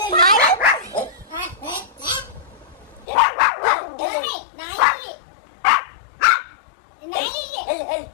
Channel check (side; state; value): right; drops out; at 3.1 s